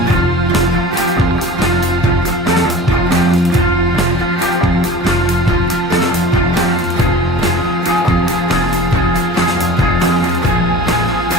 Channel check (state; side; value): normal; both; correlation 0.39